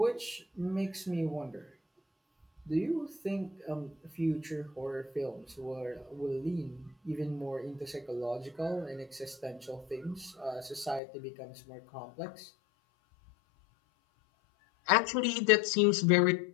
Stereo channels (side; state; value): right; drops out; at 11.0 s